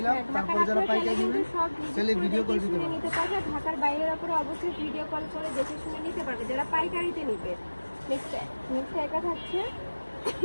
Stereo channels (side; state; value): both; inverted; correlation -1.00